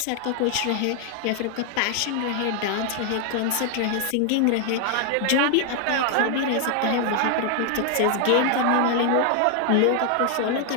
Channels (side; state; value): both; different; correlation 0.00